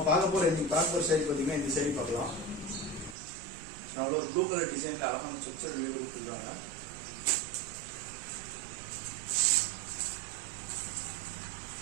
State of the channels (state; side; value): drops out; left; at 3.2 s